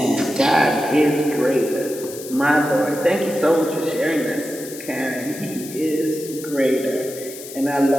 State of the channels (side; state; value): left; noise; hiss, 13 dB below the sound